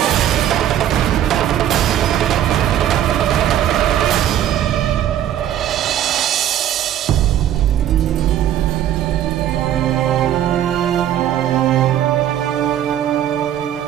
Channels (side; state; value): left; quieter; 11.2 dB